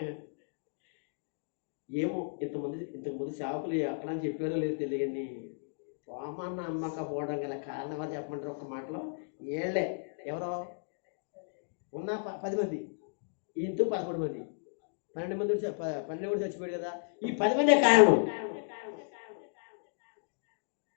ఏమో, ఇంతకుముందు సేవకులు ఎక్కడ చెప్పారో లేదు తెలియని. తోమ నమ్మకపోవడం గల కారణం ఎవరు చెప్పమంటారు? ఒక్క మాటలో ఏళ్లే. ఎవరో ఉన్న 10 మంది, ఈయనతో 11 మంది, 12 మంది 12 కూడా చచ్చిపోయాడు కదా. ఈ 10 మందే కారణం.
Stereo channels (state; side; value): silent; right; digital silence